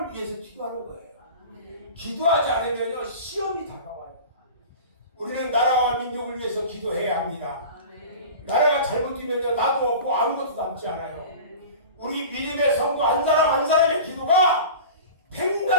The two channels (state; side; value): inverted; both; correlation -0.36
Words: 위해서 기도하는 거예요. 기도하지 않으면요 시험이 다가와요. 우리는 나라와 민족을 위해서 기도해야 합니다. 나라가 잘못되면요 나도 없고 아무것도 남지 않아요. 우리 믿음의 성도 한 사람 한 사람의 기도가